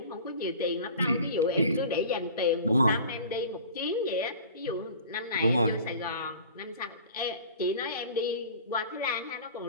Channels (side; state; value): both; inverted; correlation -0.41